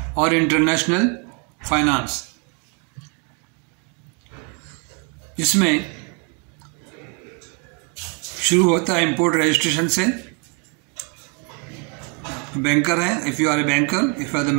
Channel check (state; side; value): quieter; left; 35.0 dB